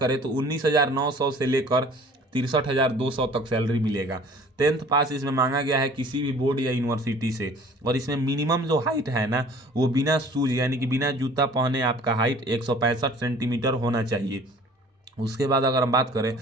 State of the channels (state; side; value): normal; both; correlation 0.49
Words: तो 19,900 से लेकर 63,200 तक सैलरी मिलेगा। 10th पास इसमें मांगा गया है किसी भी बोर्ड या यूनिवर्सिटी से। और इसमें मिनिमम जो हाइट है ना वो बिना शूज यानी कि बिना जूता पहने आपका हाइट 165 सेंटीमीटर होना चाहिए। उसके बाद अगर हम बात करें,